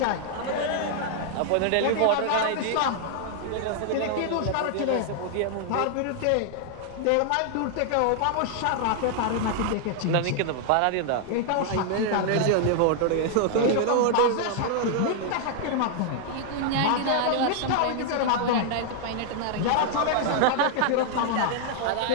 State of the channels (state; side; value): different; both; correlation 0.00